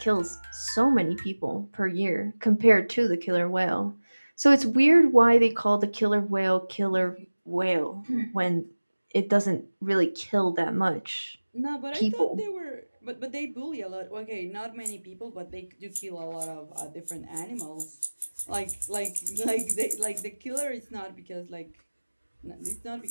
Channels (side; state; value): both; inverted; correlation -1.00